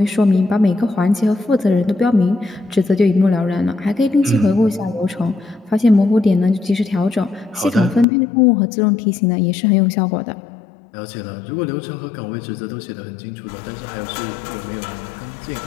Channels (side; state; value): right; drops out; at 8.1 s